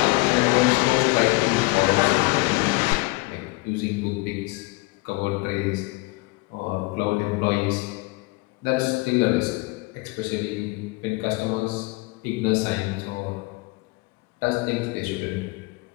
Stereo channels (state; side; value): quieter; right; 24.3 dB